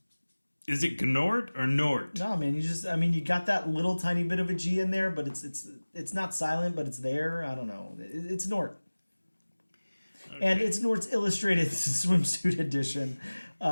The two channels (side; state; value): both; inverted; correlation -1.00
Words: is it Gnort or Nort? No, man, you got that little tiny bit of a G in there, but it's not silent, but it's there. I don't know. It's Gnort. Okay. And it's Gnort's Illustrated Swimsuit Edition.